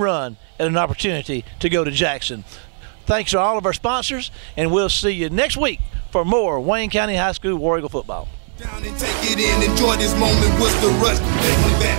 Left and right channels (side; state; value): left; silent; 65 dB below the other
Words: at an opportunity to go to Jackson. Thanks to all of our sponsors, and we'll see you next week for more Wayne County High School War Eagle football. Down and take it in, enjoy this moment. What's the rush? They wanted back,